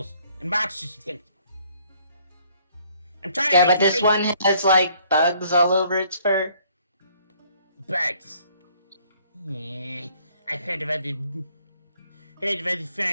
and monsters and things. I'm trying to Yeah, make but you this think. one has like bugs all over its fur. Bugs. Yeah, I've heard of other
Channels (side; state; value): both; inverted; correlation -0.63